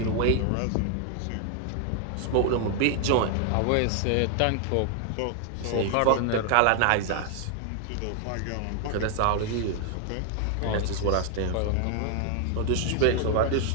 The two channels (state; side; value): different; both; correlation 0.00